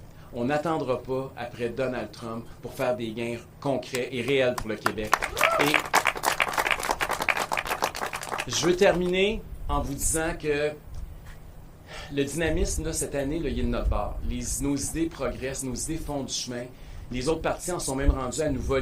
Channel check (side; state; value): both; identical; correlation 1.00